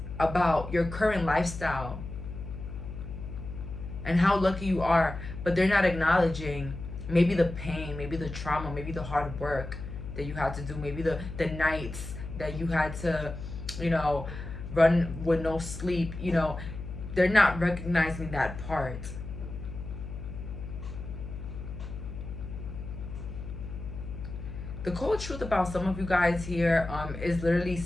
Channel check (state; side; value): noise; left; hum, 9 dB below the sound